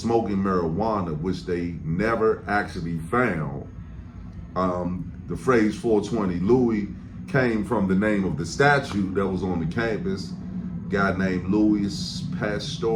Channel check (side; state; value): both; identical; correlation 1.00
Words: marijuana, which they never actually found. The phrase 420 Louis came from the name of the statue that was on the campus, a guy named Louis